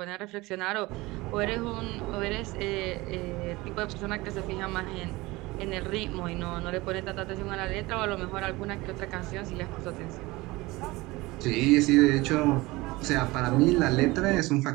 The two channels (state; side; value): quieter; left; 21.2 dB